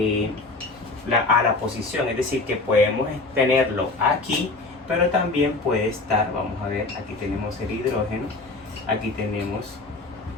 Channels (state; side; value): quieter; right; 3.4 dB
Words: la posición, es decir, que podemos tenerlo aquí, pero también puede estar, vamos a ver, aquí tenemos el hidrógeno, aquí tenemos